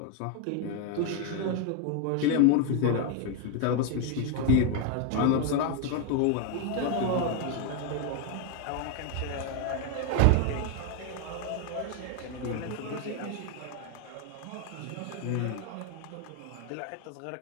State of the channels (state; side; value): different; both; correlation 0.01